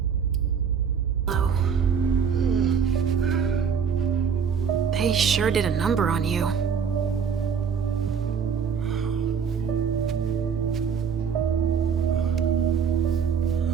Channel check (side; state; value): left; quieter; 6.9 dB